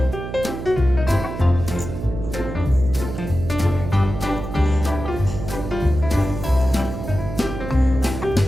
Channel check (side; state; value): right; noise; hum, 8 dB below the sound